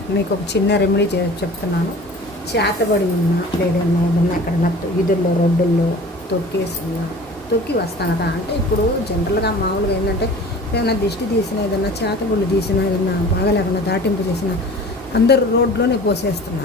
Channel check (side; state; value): both; normal; correlation 0.42